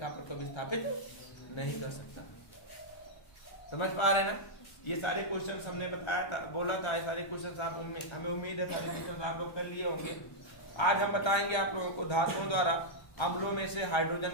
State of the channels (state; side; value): late; right; 1.3 ms